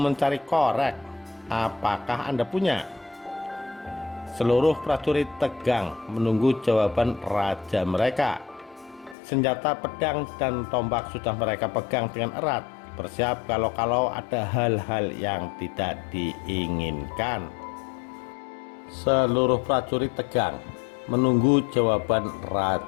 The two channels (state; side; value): drops out; right; at 9.2 s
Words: korek. Apakah Anda punya? Seluruh prajurit tegang menunggu jawaban raja mereka. Senjata pedang dan tombak sudah mereka pegang dengan erat, bersiap kalau ada hal-hal yang tidak diinginkan. Seluruh prajurit tegang menunggu jawaban